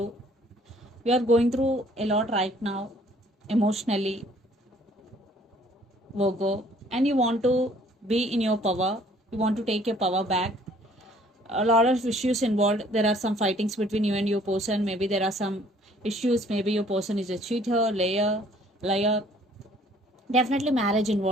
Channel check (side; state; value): both; normal; correlation 0.58